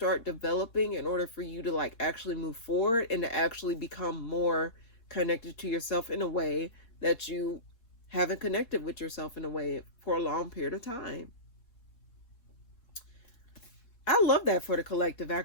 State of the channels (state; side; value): late; right; 4.3 ms